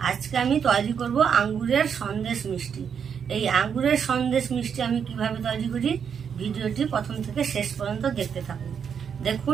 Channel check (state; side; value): quieter; left; 7.3 dB